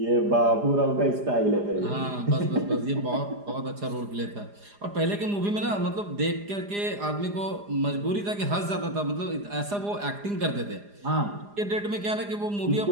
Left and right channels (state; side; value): late; left; 4.9 ms